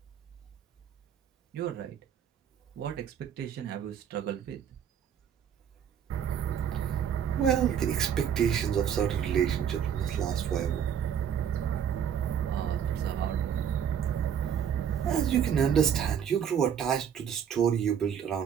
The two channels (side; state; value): left; quieter; 8.5 dB